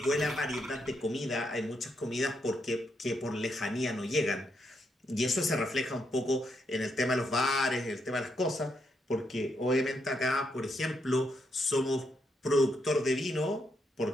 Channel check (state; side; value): normal; both; correlation 0.78